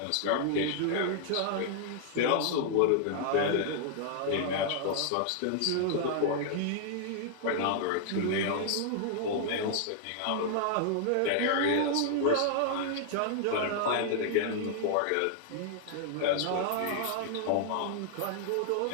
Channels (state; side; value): different; both; correlation -0.01